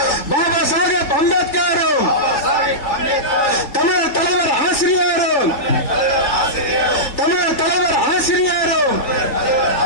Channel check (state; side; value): late; right; 3.4 ms